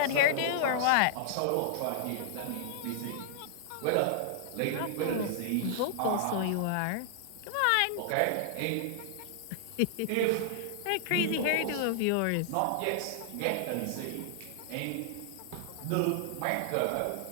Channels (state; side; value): different; both; correlation -0.01